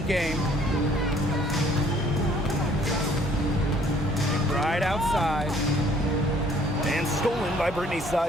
game. Right outside. And stolen by Brittany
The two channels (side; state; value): both; normal; correlation 0.60